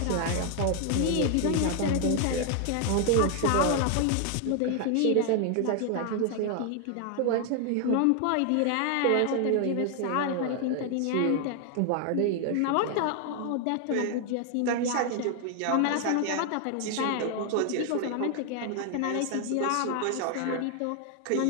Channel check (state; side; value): different; both; correlation 0.00